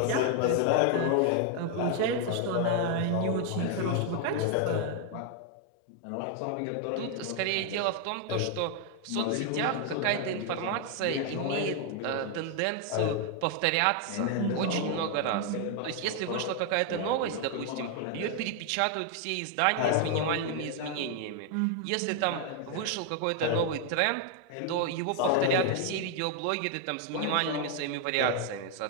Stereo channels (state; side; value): different; both; correlation 0.00